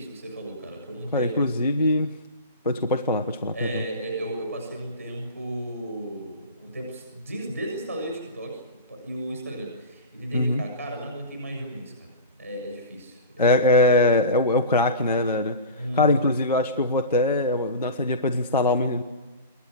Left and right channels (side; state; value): both; inverted; correlation -0.32